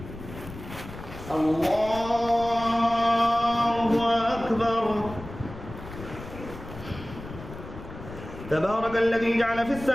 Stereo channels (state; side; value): noise; left; rumble, 13 dB below the sound